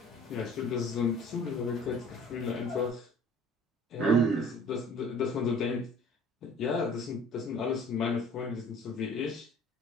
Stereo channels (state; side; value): normal; both; correlation 0.50